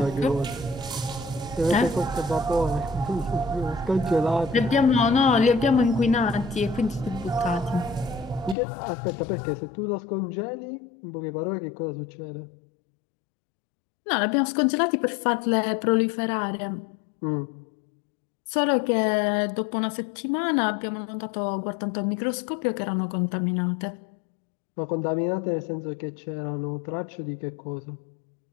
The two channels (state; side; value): drops out; right; at 8.6 s